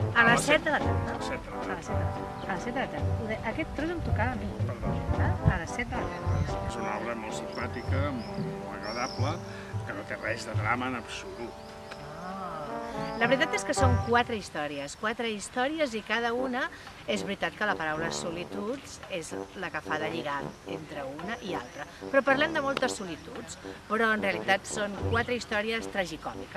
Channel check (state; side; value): identical; both; correlation 1.00